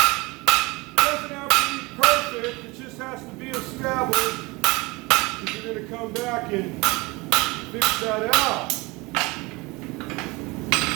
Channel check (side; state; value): left; quieter; 24.4 dB